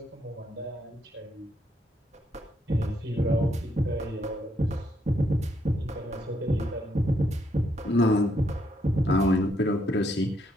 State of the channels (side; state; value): both; normal; correlation 0.75